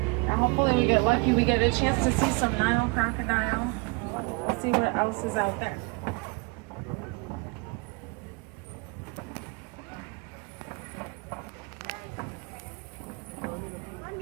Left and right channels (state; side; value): quieter; left; 29.8 dB